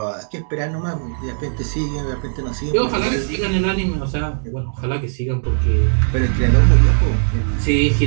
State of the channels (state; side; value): silent; left; digital silence